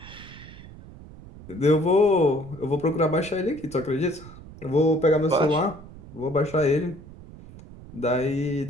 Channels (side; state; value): right; noise; rumble, 18 dB below the sound